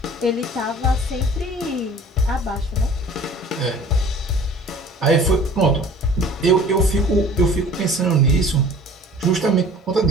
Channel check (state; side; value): normal; both; correlation 0.47